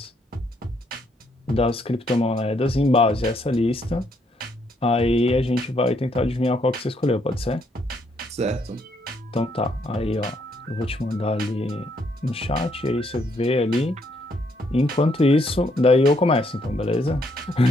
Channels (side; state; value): both; normal; correlation 0.72